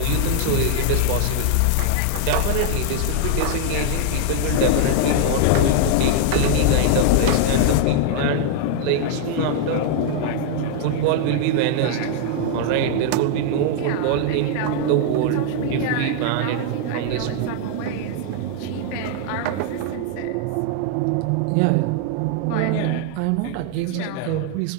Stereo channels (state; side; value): different; both; correlation 0.00